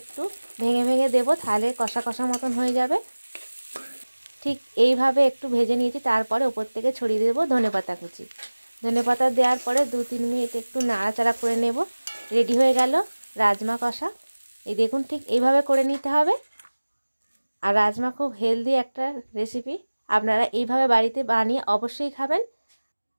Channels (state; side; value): inverted; both; correlation -1.00